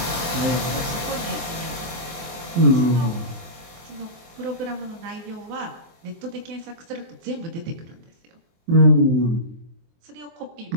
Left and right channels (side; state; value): left; late; 24 ms